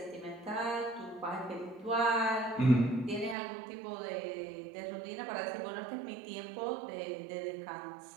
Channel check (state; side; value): drops out; left; at 3.4 s